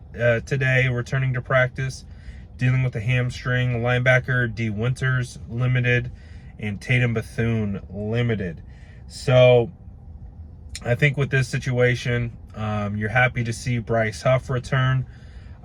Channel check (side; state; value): both; identical; correlation 1.00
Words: today, returning to practice, dealing with a hamstring. Linebacker D. Winters limited, and Tatum Bethune limited. So I think with this situation, you're happy to see Bryce Huff return.